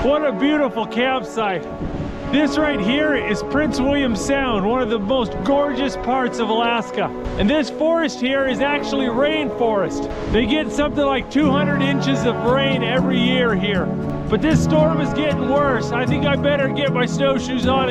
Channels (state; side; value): identical; both; correlation 1.00